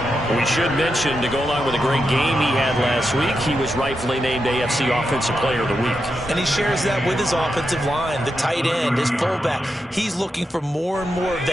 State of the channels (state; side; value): normal; both; correlation 0.86